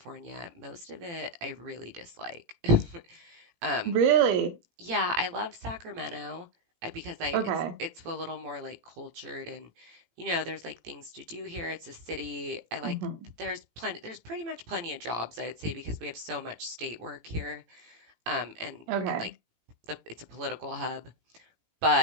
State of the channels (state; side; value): late; left; 18 ms